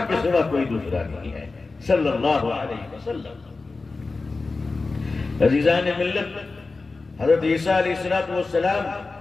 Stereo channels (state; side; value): quieter; right; 3.8 dB